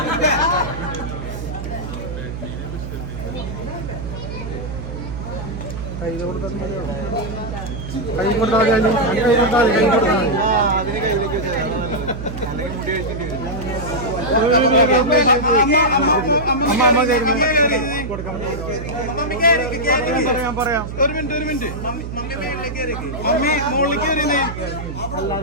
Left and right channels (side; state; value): right; noise; hum, 7 dB below the sound